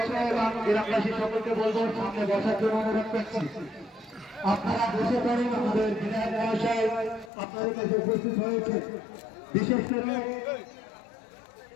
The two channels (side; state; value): right; drops out; at 7.3 s